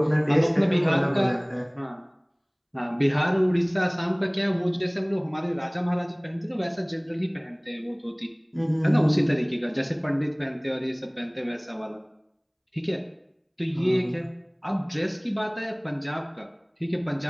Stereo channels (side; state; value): both; identical; correlation 1.00